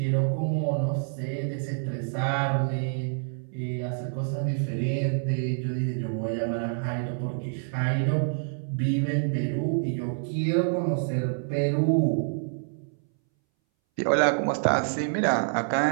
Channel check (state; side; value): silent; left; 60 dB below the other